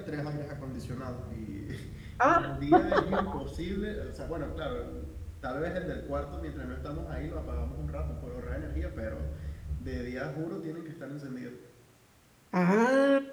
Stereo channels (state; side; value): identical; both; correlation 1.00